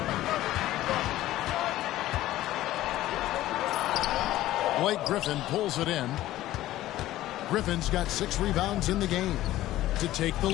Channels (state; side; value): quieter; right; 15.0 dB